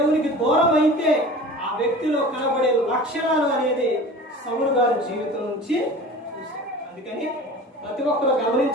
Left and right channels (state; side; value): normal; both; correlation 0.39